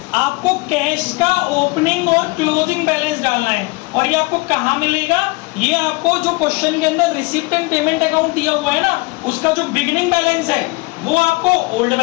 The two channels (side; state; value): right; quieter; 25.4 dB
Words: आपको कैश का ओपनिंग और क्लोजिंग बैलेंस डालना है। और ये आपको कहाँ मिलेगा? ये आपको जो क्वेश्चन के अंदर रिसीप्ट एंड पेमेंट अकाउंट दिया हुआ है ना, उसका जो बिगिनिंग बैलेंस है वो आपको ओल्ड